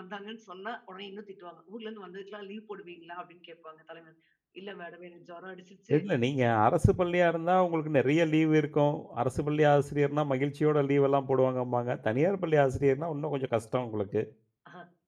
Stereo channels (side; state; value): both; identical; correlation 1.00